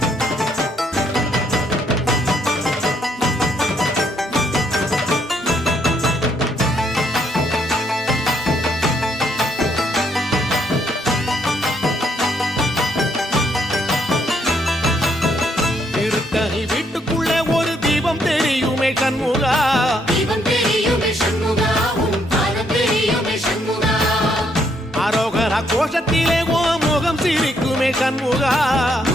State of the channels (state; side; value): normal; both; correlation 0.72